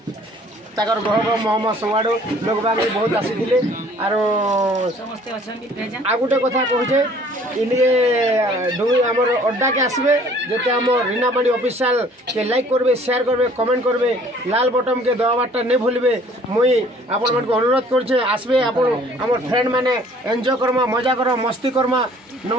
गह गह महम सब लोक बाग बहुत आसी आर आ गोटे कथा कहे इनके डुंगरी आमर अड्डा के आसबे जिते आम रीनापाणी ऑफिशियल के लाइक करबे शेयर करबे कमेंट करबे लाल बटन के दबाटा नहीं भूलबे मुई आपण मन को अनुरोध करछे आसबे आपण आमर फ्रेंड माने एंजॉय करमा मजा करमा मस्ती करमा।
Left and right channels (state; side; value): normal; both; correlation 0.55